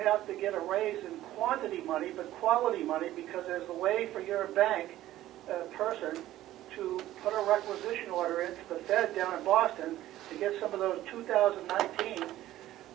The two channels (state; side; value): quieter; left; 14.4 dB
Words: have to get a raise in quantity money, but quality money, because there's a way for your bank person to put a requisition order into the Fed down in Boston to get some of those 2019